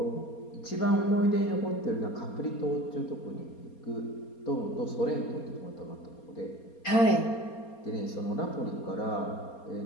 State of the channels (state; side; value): late; right; 4.3 ms